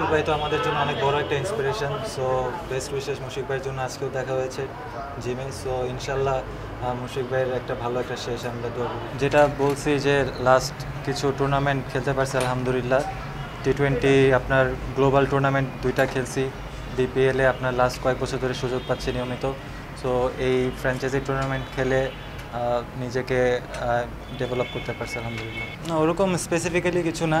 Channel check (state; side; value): identical; both; correlation 1.00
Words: ভাই তো আমাদের জন্য অনেক বড় একটা inspiration. So best wishes Mushfiq ভাইয়ের জন্য আজকেও দেখা হয়েছে জিমে। সো ইনশাল্লাহ মুশফিক ভাইয়ের একটা ভালো একটা শেষ আমরা দৌড়, যেটা বলছি যে লাস্ট কিছু টুর্নামেন্ট খেলতে পারছি আলহামদুলিল্লাহ। T20 আপনার গ্লোবাল টুর্নামেন্ট 2টা খেলছি, বিপিএলে আপনার লাস্ট কয়েক বছর ধরে সুযোগ পাচ্ছি নিয়মিত। সো এই ফ্র্যাঞ্চাইজি টুর্নামেন্ট খেলে নিজেকে ডেভেলপ করতে পারছি আলহামদুলিল্লাহ। না, ওরকম স্পেসিফিক্যালি কিছু না,